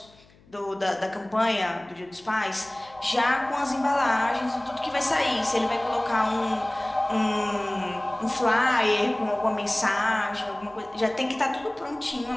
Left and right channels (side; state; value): left; noise; hum, 28 dB below the sound